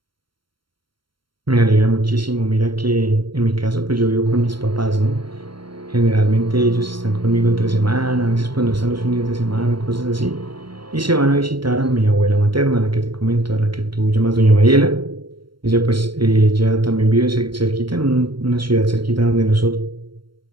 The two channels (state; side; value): late; left; 0.73 ms